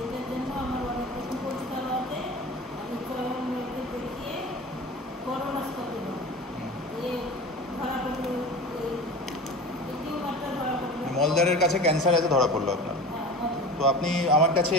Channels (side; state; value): both; normal; correlation 0.35